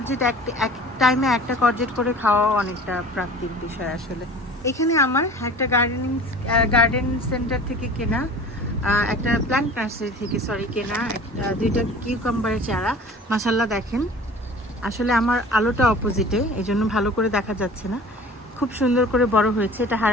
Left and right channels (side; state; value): both; normal; correlation 0.42